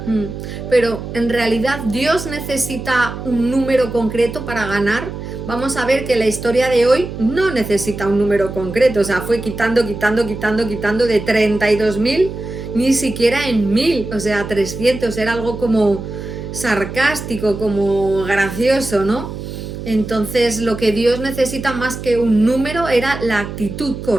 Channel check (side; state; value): right; noise; hum, 9 dB below the sound